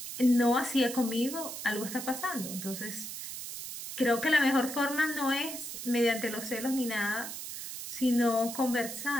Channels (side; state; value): right; noise; hiss, 8 dB below the sound